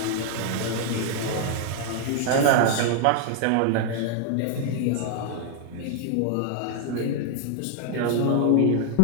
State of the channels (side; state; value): both; different; correlation 0.00